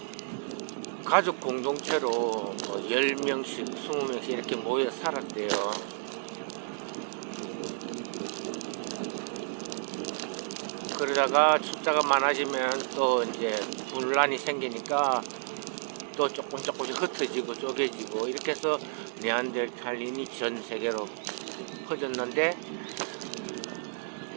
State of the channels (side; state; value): left; silent; 57 dB below the other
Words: 가족 공동체로 10명씩, 20명씩 이렇게 모여 살았대요. 그러다가 숫자가 많아지면 또 이제 분란이 생기니까 또 조금씩 흩어지고 쪼개지고, 이렇게 해서 네안데르탈인이 전 세계로 퍼졌는데,